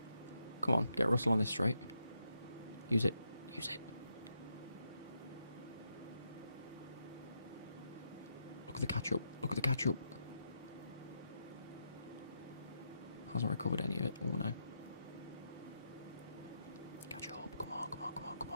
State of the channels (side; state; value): both; inverted; correlation -0.81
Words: Come on, get Russell on this straight. Use it. Use it. Look at the catch-up. Look at the catch-up. Hasn't recovered any of it. Oh, no. Catch up. Come on, come on, come on, come